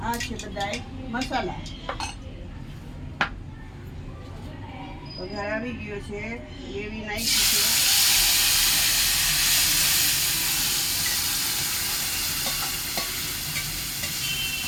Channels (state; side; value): identical; both; correlation 1.00